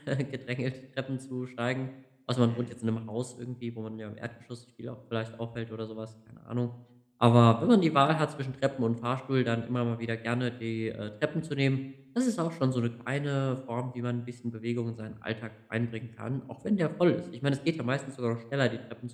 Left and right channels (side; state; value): both; identical; correlation 1.00